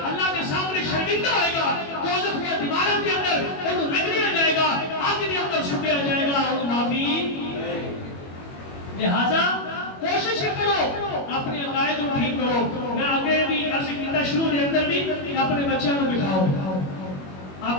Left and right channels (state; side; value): late; right; 21 ms